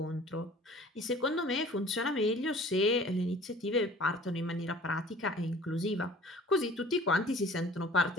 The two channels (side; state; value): both; normal; correlation 0.48